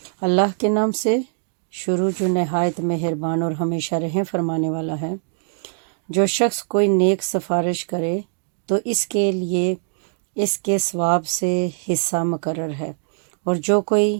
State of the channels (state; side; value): silent; left; digital silence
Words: اللہ کے نام سے شروع جو نہایت مہربان اور ہمیشہ رحم فرمانے والا ہے۔ جو شخص کوئی نیک سفارش کرے تو اس کے لیے اس کے ثواب سے حصہ مقرر ہے، اور جو